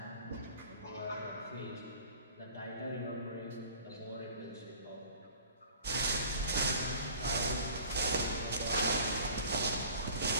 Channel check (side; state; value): both; inverted; correlation -0.45